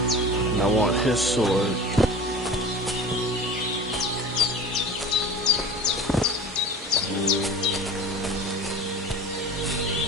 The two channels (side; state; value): both; normal; correlation 0.37